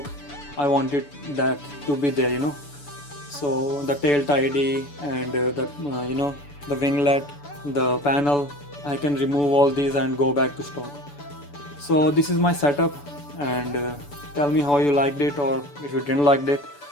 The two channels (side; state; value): right; late; 6.9 ms